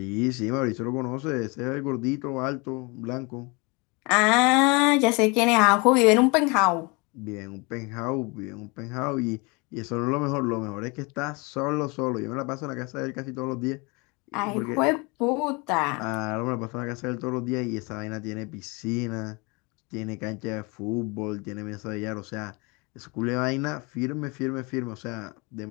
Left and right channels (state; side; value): quieter; right; 28.6 dB